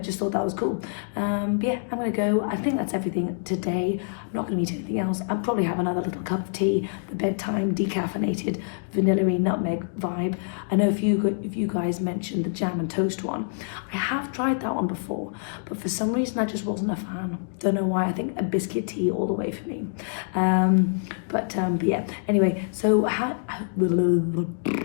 just thought that was cool. But yeah, I'm gonna go. I think that's everything today. I'm not gonna eat anything else. I'll probably have another little cup of tea, the bedtime decaffeinated vanilla-y nutmeg vibe. I know if you guys mentioned the jam and toast one, I have tried that one before, but for some reason I just wasn't a fan. Don't know why. I think a biscuit tea all the way for me. But yeah. Anyway, so I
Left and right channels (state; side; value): silent; right; digital silence